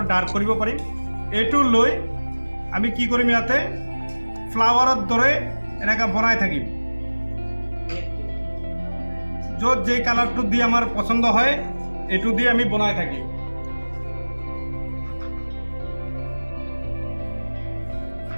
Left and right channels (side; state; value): both; inverted; correlation -1.00